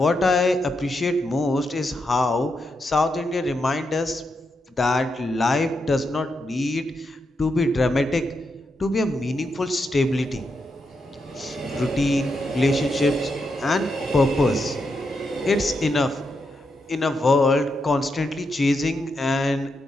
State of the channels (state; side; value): normal; both; correlation 0.83